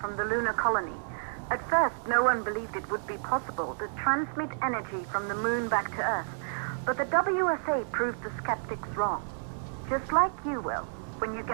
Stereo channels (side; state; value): left; silent; digital silence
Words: the lunar colony. At first, no one believed it would be possible to transmit energy from the moon back to Earth, but the WSA proved the skeptics wrong. Just like you will, when you